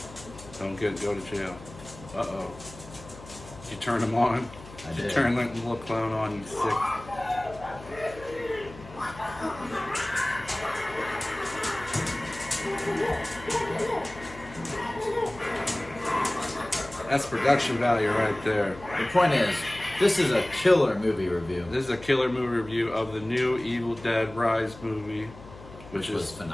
Don't go to jail. Uh-oh. Did you turn him on? I Did you did. turn that little clown on, you sick? That's production value right there. The point is, this is a killer movie review. This is a killer movie review of the new Evil Dead Rise movie, Which was is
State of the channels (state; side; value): noise; left; hum, 17 dB below the sound